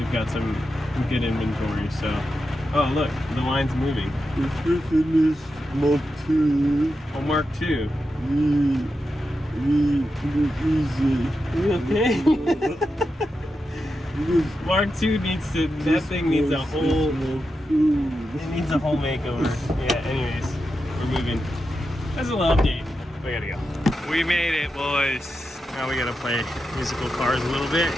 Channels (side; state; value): both; normal; correlation 0.88